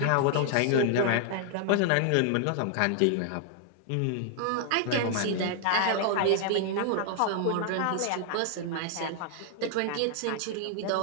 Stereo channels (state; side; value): different; both; correlation 0.00